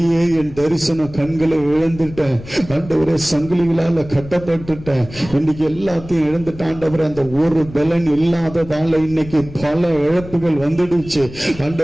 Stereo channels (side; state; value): left; noise; rumble, 16 dB below the sound